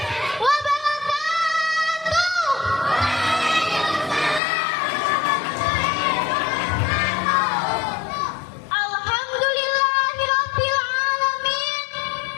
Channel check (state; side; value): drops out; right; at 4.4 s